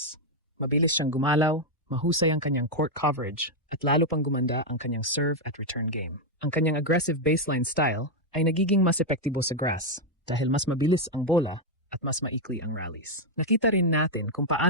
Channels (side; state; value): both; normal; correlation 0.01